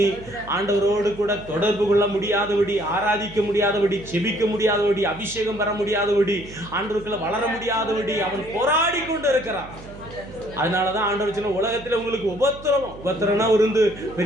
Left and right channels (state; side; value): noise; right; hum, 17 dB below the sound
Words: ஆண்டவரோடு கூட தொடர்பு கொள்ள முடியாதபடி, ஆராதிக்க முடியாதபடி, செபிக்க முடியாதபடி, அபிஷேகம் பெற முடியாதபடி, ஆண்டவருக்குள்ள வளர முடியாதபடி அவன் போராடி கொண்டு இருக்கிறான். அதனாலதான் ஆண்டவர் சொன்ன, உலகத்தில் உங்களுக்கு உபத்திரவம்னா இருந்து